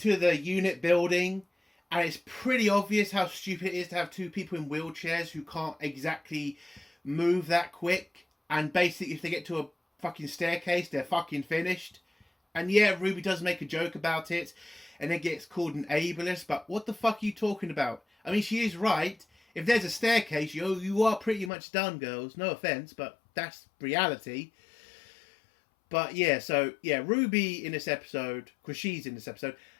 the unit building, and it's pretty obvious how stupid it is to have two people in wheelchairs who can't exactly move that quick, and basically if they get to a fucking staircase, they're fucking finished. And Ruby does make a joke about it, and it gets called an ableist, but what the fuck are you talking about? I mean, she is right. If there's a staircase, you are pretty much done, girls. No offence, but that's reality. But Ruby in this episode, because she's in this episode,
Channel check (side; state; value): right; drops out; at 21.5 s